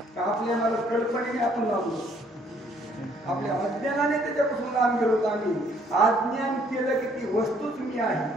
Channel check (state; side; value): normal; both; correlation 0.64